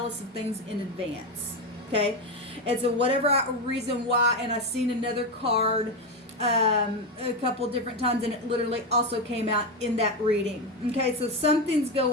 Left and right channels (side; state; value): both; normal; correlation 0.12